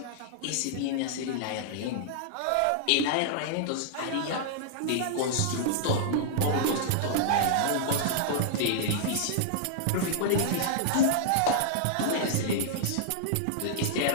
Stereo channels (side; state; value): both; different; correlation -0.01